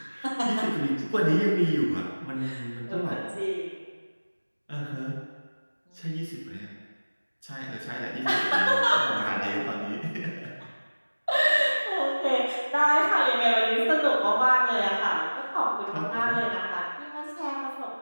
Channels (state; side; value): inverted; both; correlation -1.00